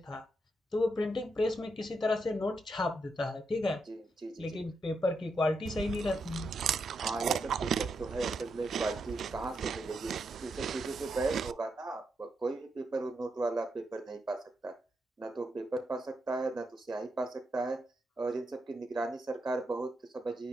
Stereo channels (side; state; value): both; normal; correlation 0.82